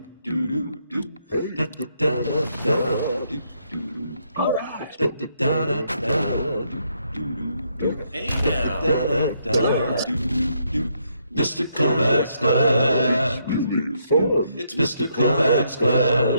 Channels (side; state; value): both; inverted; correlation -0.75